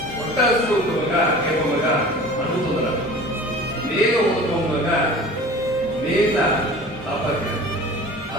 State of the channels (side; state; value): both; normal; correlation 0.41